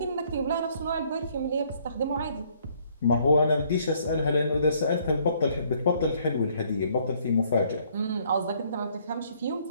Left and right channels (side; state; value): both; inverted; correlation -0.65